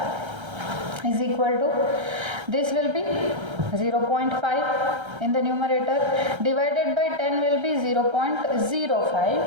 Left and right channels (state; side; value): late; left; 1.3 ms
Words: is equal to, this will be 0.5 in the numerator, divided by 10 will be